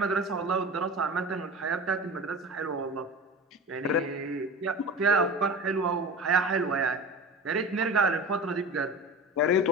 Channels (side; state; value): both; normal; correlation 0.33